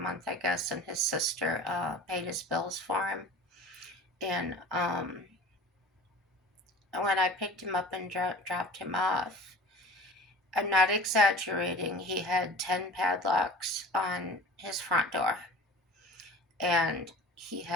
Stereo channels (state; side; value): normal; both; correlation 0.40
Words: I guess, and his sister paid his bills for him. And when I picked him up and dropped him off, I'm not exaggerating, he had 10 padlocks on his front door. And he